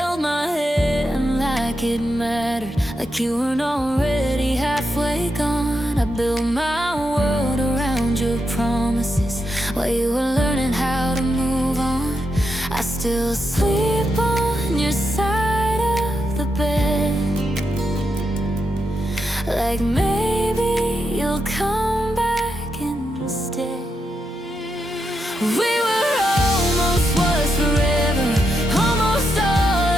my hand like it mattered, like you weren't already halfway gone. I built my world around your promises while you were learning how to move on. I still sleep on your side of the bed, like maybe you'll come back instead. We were almost was forever, almost all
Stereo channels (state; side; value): normal; both; correlation 0.84